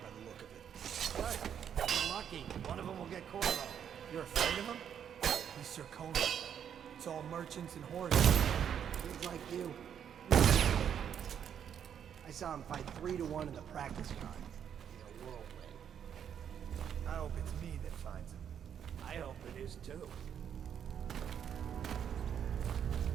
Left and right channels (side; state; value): left; quieter; 8.6 dB